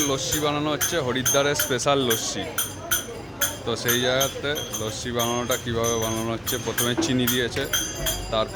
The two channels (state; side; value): identical; both; correlation 1.00